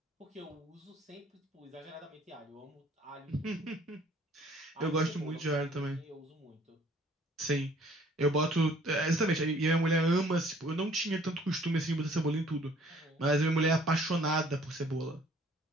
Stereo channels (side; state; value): both; normal; correlation 0.57